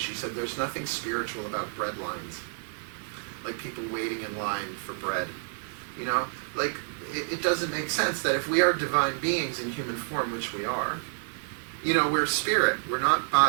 said, there's nothing spiritual about bread lines. Like people waiting in line for bread. You know? Like, it doesn't make sense that if we are divine beings in human form, which we are, you know, we're spirit. We're not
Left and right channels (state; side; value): silent; left; 59 dB below the other